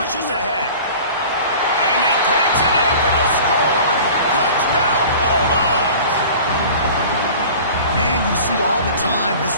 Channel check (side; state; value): both; inverted; correlation -0.42